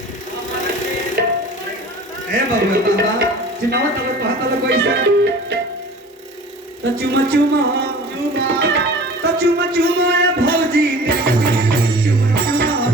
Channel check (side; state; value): both; normal; correlation 0.42